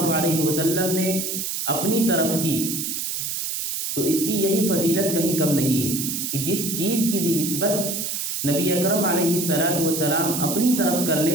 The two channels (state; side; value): noise; right; hiss, 2 dB below the sound